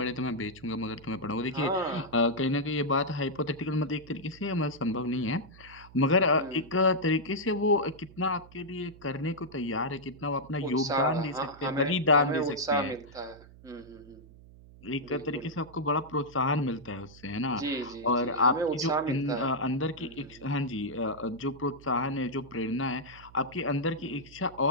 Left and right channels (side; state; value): right; noise; hum, 21 dB below the sound